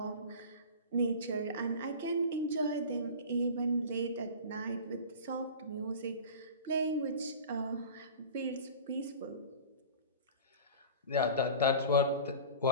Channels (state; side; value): inverted; both; correlation -0.37